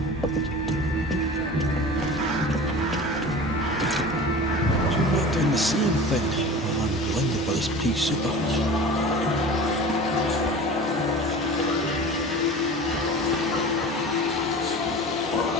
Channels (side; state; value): both; normal; correlation 0.37